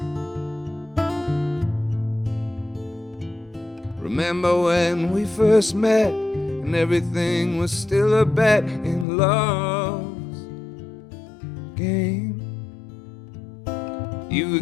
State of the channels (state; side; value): drops out; right; at 9.1 s